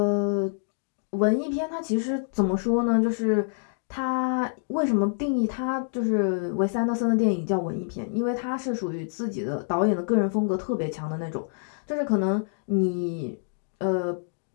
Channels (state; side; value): silent; right; digital silence